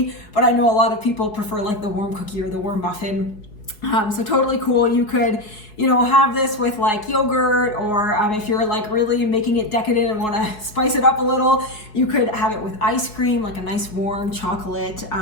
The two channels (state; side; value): late; right; 4.7 ms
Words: but I know a lot of people prefer like the warm cookie or the warm muffin. So totally cool. You could, have this with like yogurt, or if you're like really making it decadent and want to spice it up a little, you could have it with ice cream, like a nice warm chocolate